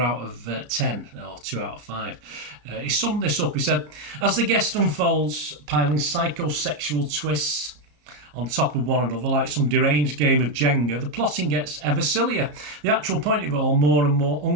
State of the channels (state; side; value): late; left; 34 ms